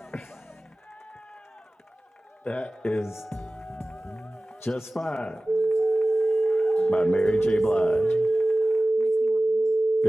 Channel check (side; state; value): both; normal; correlation 0.97